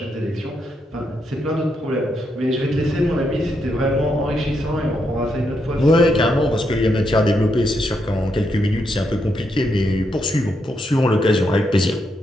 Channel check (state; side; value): normal; both; correlation 0.80